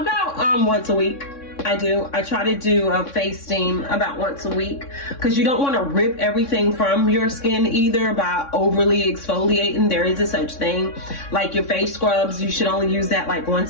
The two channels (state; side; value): late; right; 3.6 ms